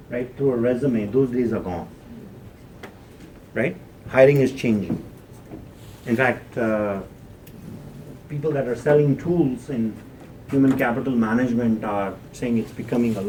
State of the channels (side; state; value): both; identical; correlation 1.00